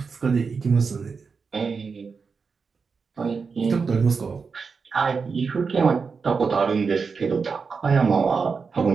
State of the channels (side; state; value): left; quieter; 5.2 dB